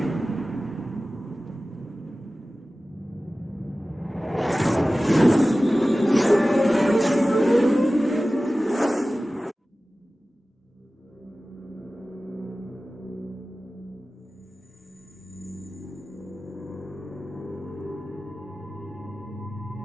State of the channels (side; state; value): both; normal; correlation 0.96